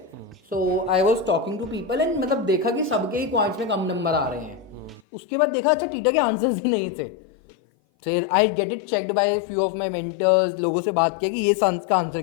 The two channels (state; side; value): drops out; right; at 5.0 s